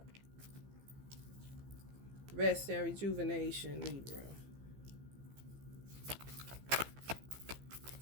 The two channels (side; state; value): left; late; 15 ms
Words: Rest and rejuvenation, Libra.